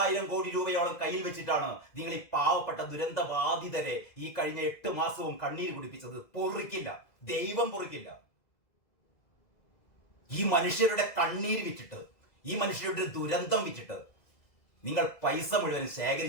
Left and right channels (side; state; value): right; late; 2.0 ms